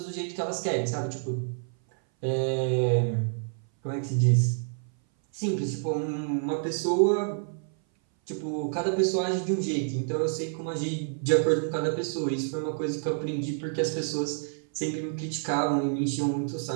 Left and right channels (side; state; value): left; silent; 58 dB below the other